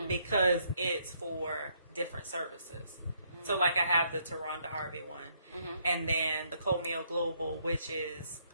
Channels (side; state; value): both; inverted; correlation -0.71